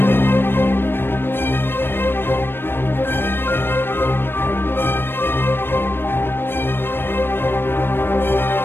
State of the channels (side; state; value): right; late; 0.10 ms